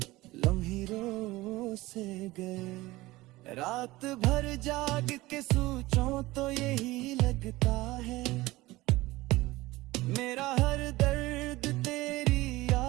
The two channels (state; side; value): quieter; left; 19.2 dB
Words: लम्हे रो से गए। रात भर जाग के सोचूं तो यही लगता है। मेरा हर दर्द तेरी